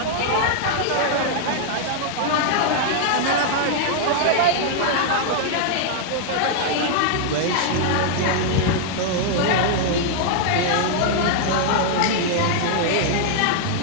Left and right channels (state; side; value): different; both; correlation 0.00